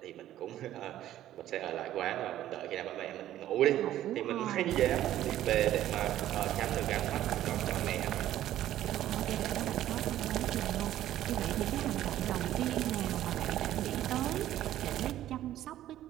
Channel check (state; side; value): quieter; left; 13.0 dB